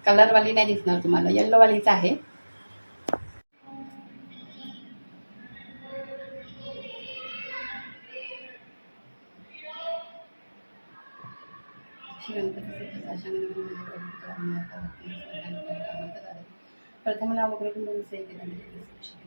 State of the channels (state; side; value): inverted; both; correlation -1.00